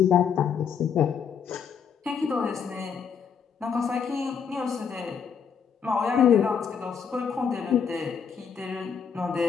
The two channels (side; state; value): right; quieter; 6.9 dB